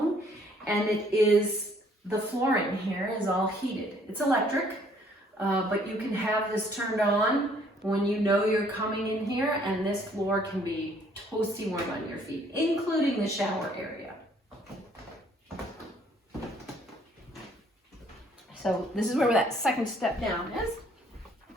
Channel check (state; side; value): normal; both; correlation 0.62